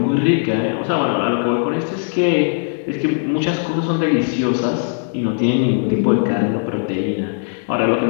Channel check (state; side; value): silent; right; digital silence